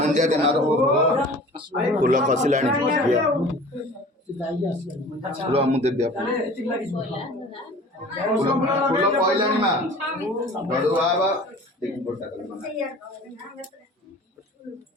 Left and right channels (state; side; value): normal; both; correlation 0.43